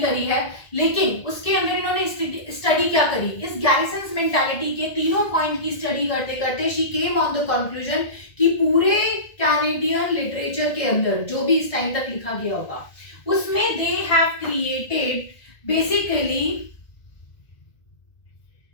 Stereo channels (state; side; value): late; right; 1.8 ms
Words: करी है, लेकिन उसके अंदर इन्होंने स्टडी क्या करी? इस गैरिसन्स मेंटालिटी के तीनों पॉइंट की स्टडी करते करते she came on the conclusion कि पूरे कैनेडियन लिटरेचर के अंदर जो भी इस टाइम तक लिखा गया होगा उसमें they have created basically